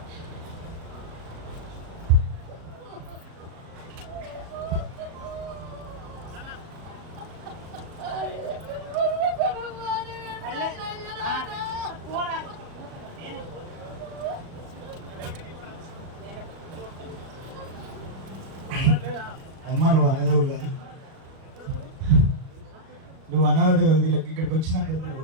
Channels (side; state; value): left; late; 37 ms